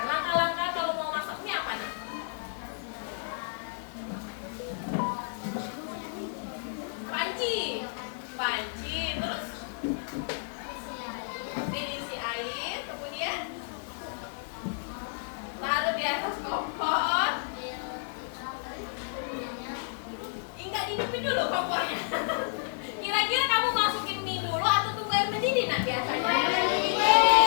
langkah-langkah kalau mau masak mie apa nih? Panci, terus diisi air, kemudian taruh di atas kompor. Enggak dihidupin dulu kompornya. Kira-kira kamu masukin mie dulu atau tunggu air mendidih nak biasanya?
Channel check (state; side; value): silent; right; digital silence